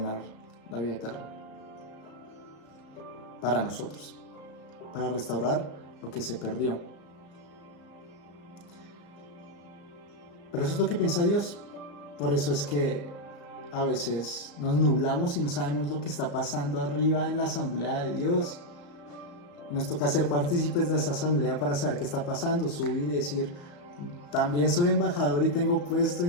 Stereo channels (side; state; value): right; late; 35 ms